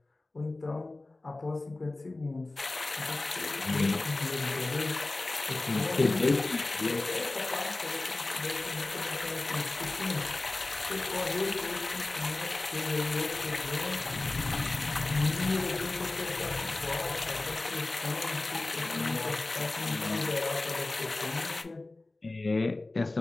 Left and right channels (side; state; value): right; quieter; 3.0 dB